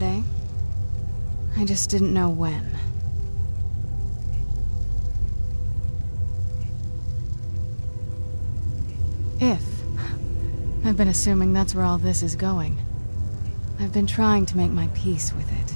I just didn't know when. If. I've been assuming that's where all this is going. I've been trying to make my peace with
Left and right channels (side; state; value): both; inverted; correlation -1.00